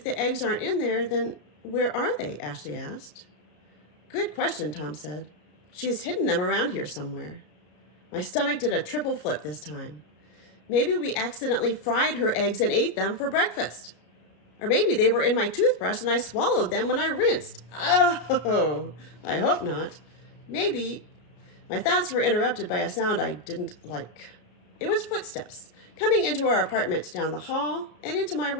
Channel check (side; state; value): right; late; 33 ms